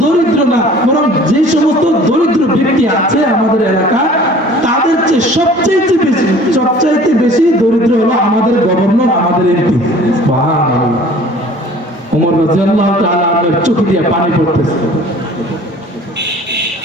দরিদ্র না, বরং যে সমস্ত দরিদ্র ব্যক্তি আছে আমাদের এলাকায় তাদের চেয়ে সবচাইতে বেশি দরিদ্র হলো আমাদের গভর্নর, আমাদের এমপি। সুবহানাল্লাহ। ওমর রাদিয়াল্লাহু তাআলা আপনার চোখে দিয়ে পানি পড়তেছে।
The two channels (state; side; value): normal; both; correlation 0.49